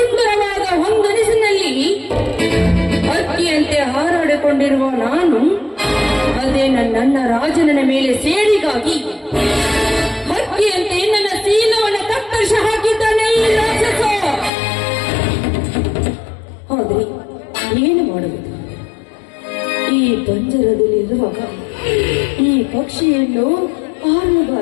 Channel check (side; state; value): right; drops out; at 14.5 s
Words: ಹೊಂಗನಸಿನಲ್ಲಿ ಹಕ್ಕಿಯಂತೆ ಹಾರಾಡಿಕೊಂಡಿರುವ ನಾನು ಅದೇ ನನ್ನ ರಾಜನ ಮೇಲೆ ಸೇರಿಗಾಗಿ ಹಕ್ಕಿಯಂತೆ ನನ್ನ ಶೀಲವನ್ನು ಕತ್ತರಿಸಿ ಹಾಕಿದ್ದಾನೆ ಈ ರಾಕ್ಷಸ. ಆದ್ರೆ ಏನು ಮಾಡುವುದು? ಈ ಪಂಜರದಲ್ಲಿರುವಾಗ ಈ ಪಕ್ಷಿಯನ್ನು